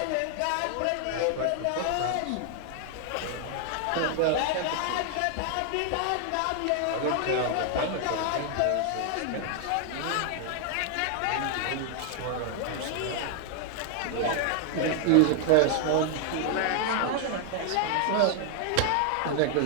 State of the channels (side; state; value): both; different; correlation 0.00